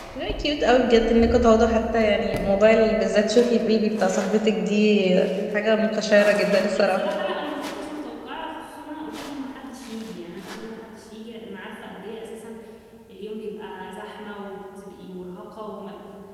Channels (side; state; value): both; identical; correlation 1.00